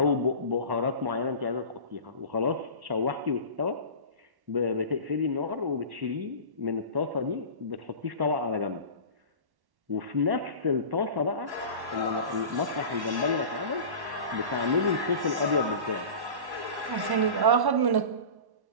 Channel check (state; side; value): late; left; 1.1 ms